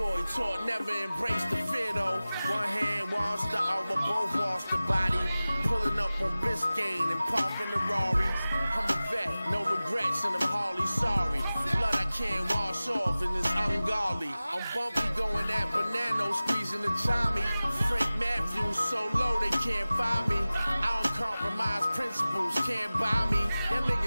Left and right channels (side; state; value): both; inverted; correlation -0.97